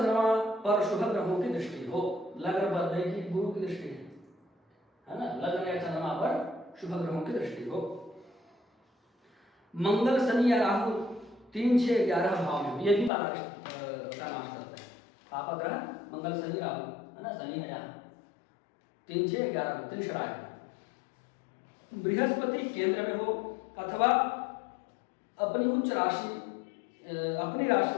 पर शुभ ग्रहों की दृष्टि हो। लग्न पर देखिए गुरु की दृष्टि है ना, लग्न या चंद्रमा पर शुभ ग्रहों की दृष्टि हो। मंगल शनि या राहु 3, 6, 11 भाव में, ये भी बालारिष्ट का नाश करते हैं। पापा ग्रह मंगल शनि राहु है ना, शनि है यहाँ 3, 6, 11 में त्रिशराय है। बृहस्पति केंद्र में हो अथवा अपनी उच्च राशि, अपनी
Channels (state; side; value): drops out; right; at 13.1 s